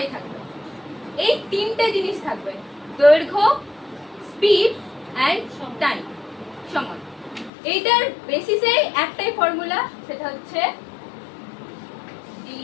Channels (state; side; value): drops out; right; at 7.5 s